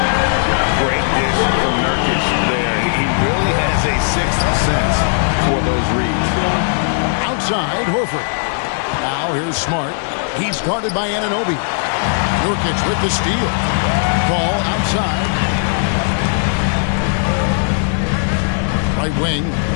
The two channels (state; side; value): silent; right; digital silence